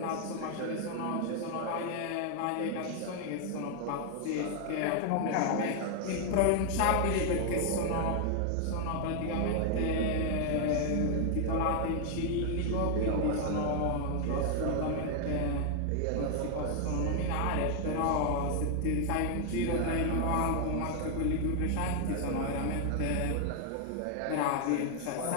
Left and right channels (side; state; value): both; different; correlation 0.00